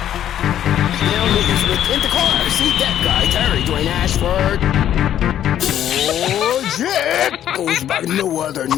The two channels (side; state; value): right; quieter; 10.9 dB